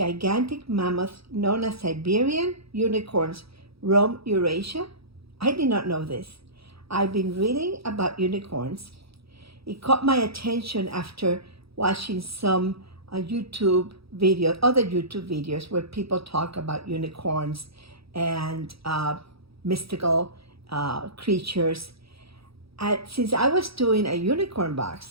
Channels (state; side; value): late; left; 0.77 ms